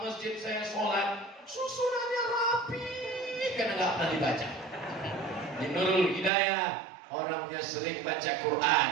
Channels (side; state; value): left; drops out; at 6.3 s